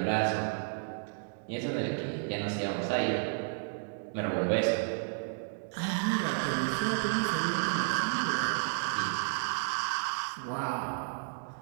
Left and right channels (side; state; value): left; silent; digital silence